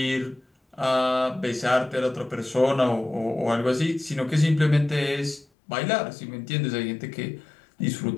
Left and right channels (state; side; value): drops out; right; at 5.5 s